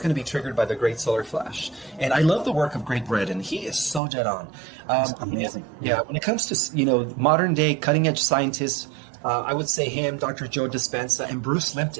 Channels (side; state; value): left; drops out; at 4.0 s